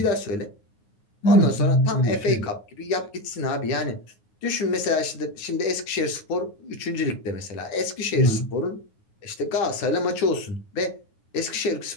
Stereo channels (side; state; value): right; late; 9.5 ms